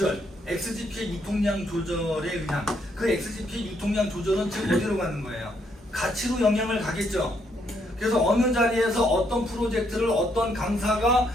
XGP의 유통량 조절에 의한, 그 XGP 유통량 조절은 지금 어디로 가는 거예요? 가치로 영향을 가겠죠. 그래서 어느 자리에서 어떤 프로젝트를 어떤 강사가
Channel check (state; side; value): normal; both; correlation 0.73